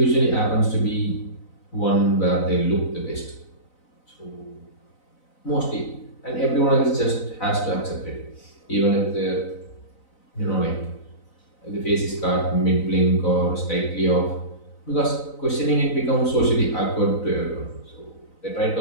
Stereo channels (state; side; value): late; right; 4.0 ms